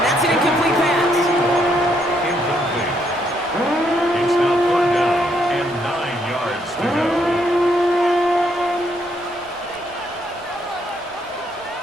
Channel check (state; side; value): normal; both; correlation 0.73